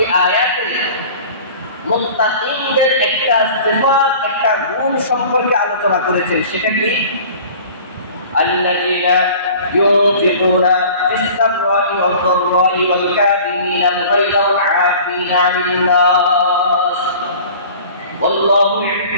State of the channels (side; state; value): both; inverted; correlation -0.44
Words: আয়াতে মুত্তাকিনদের একটা সিফাত, একটা গুণ সম্পর্কে আলোচনা করেছেন। সেটা কি? الذين ينفقون في السراء والضراء والكاظمين الغيظ والعافين عن الناس والله